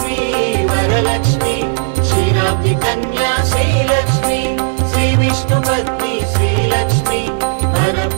वरलक्ष्मी क्षीराब्धि कन्या श्रीलक्ष्मी श्रीविष्णुपत्नी श्रीलक्ष्मी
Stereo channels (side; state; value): left; silent; digital silence